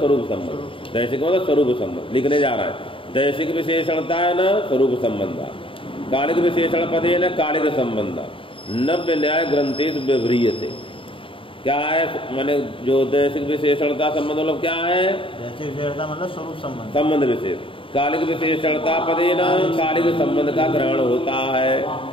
संबंध, दैसिक मतलब स्वरूप संबंध लिखने जा रहा है। दैसिक विशेषणता है न स्वरूप संबंध, कालिक विशेषण पदे न कालिक संबंध। नव्य न्याय ग्रंथेश व्यवह्रियते। क्या है? माने जो दैसिक विशेषणता संबंध मतलब क्या है? दैसिक विशेषणता मतलब स्वरूप संबंध, संबंध विशेष। कालिक विशेषणता पदे न कालिक संबंध का ग्रहण होता है।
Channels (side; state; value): right; late; 0.25 ms